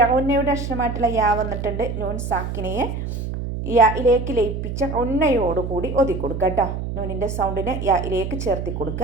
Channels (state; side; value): noise; right; hum, 5 dB below the sound